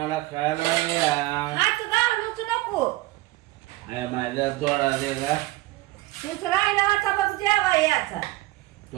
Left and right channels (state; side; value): quieter; left; 19.4 dB